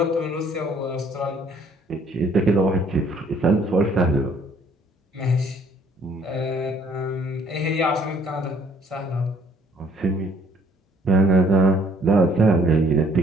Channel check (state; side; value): normal; both; correlation 0.61